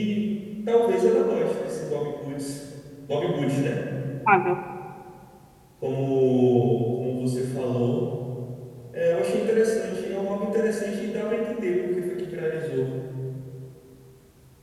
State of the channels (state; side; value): identical; both; correlation 1.00